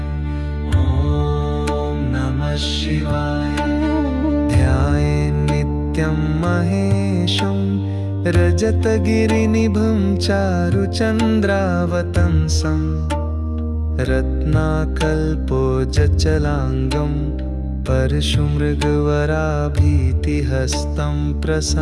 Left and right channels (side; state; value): both; identical; correlation 1.00